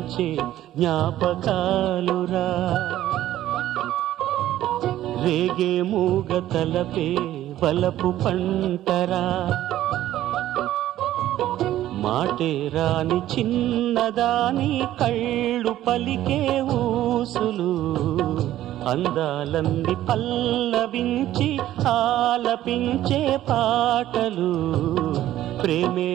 జ్ఞాపకాలురా రేగే మూగ తలపే వలపు పంటరా మాటే రాని చిన్నదాని కళ్ళు పలికే ఊసులు అందాలన్నీ పల్లవించి ఆలపించే పాటలు ప్రేమే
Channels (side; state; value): left; quieter; 13.4 dB